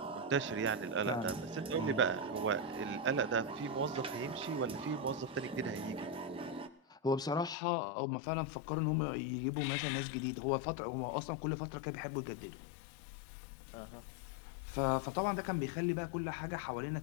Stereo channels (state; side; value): drops out; right; at 7.6 s